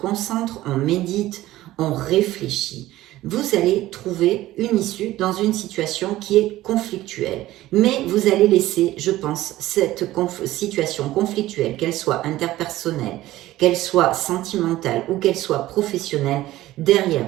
on médite, on réfléchit. Vous allez trouver une issue dans une situation qui est conflictuelle. Mais vous allez laisser, je pense, cette situation conflictuelle, qu'elle soit interpersonnelle, qu'elle soit sentimentale ou qu'elle soit professionnelle, derrière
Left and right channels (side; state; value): left; quieter; 15.8 dB